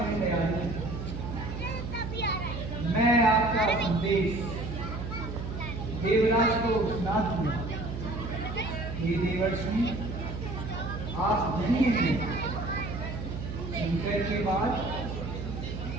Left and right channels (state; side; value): noise; right; hum, 6 dB below the sound